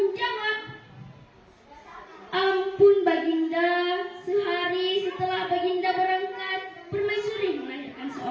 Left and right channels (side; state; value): both; identical; correlation 1.00